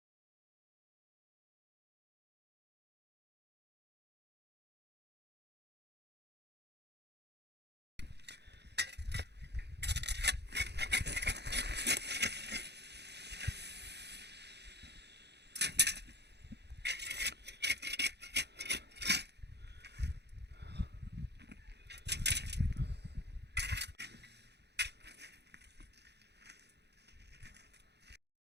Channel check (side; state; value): left; late; 0.49 ms